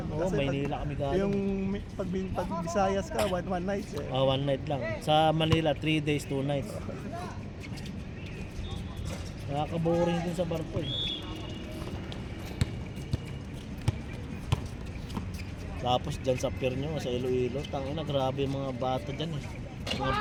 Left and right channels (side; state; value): both; identical; correlation 1.00